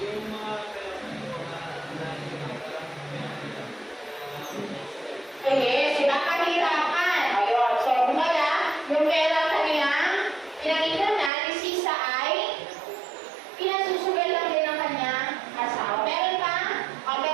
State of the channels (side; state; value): left; drops out; at 11.3 s